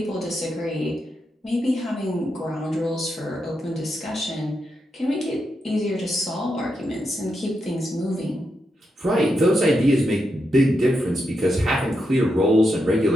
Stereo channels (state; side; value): normal; both; correlation 0.84